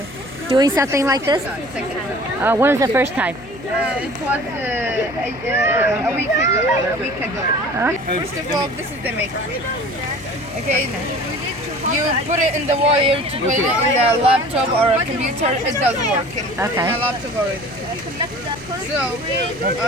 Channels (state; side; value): noise; left; hum, 17 dB below the sound